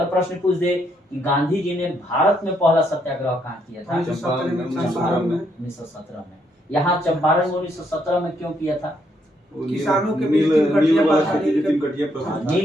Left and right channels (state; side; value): normal; both; correlation 0.74